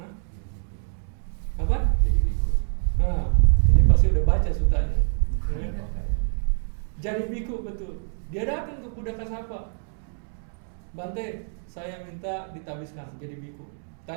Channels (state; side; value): silent; left; digital silence